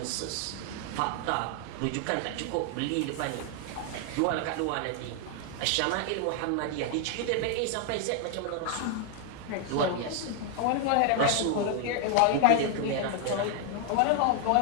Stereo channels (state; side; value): different; both; correlation 0.00